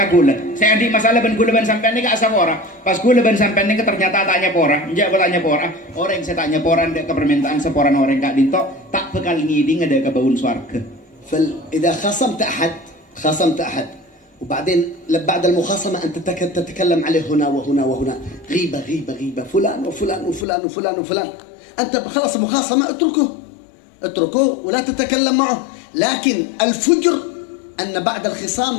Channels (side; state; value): right; drops out; at 20.5 s